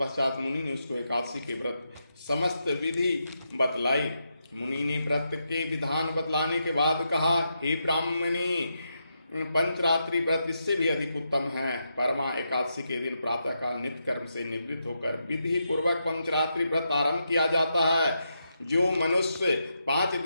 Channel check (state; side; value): inverted; both; correlation -0.84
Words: मुनि ने उसको एकादशी के व्रत समस्त विधि बतलाई। मुनि ने व्रत के विधान बतलाने के बाद कहा, हे ब्राह्मणी, पंचरात्रि व्रत इससे भी अधिक उत्तम है। परमा एकादशी के दिन प्रातःकाल नित्य कर्म से निवृत्त होकर विधि पूर्वक पंचरात्रि व्रत आरंभ किया जाता है। जो मनुष्य 5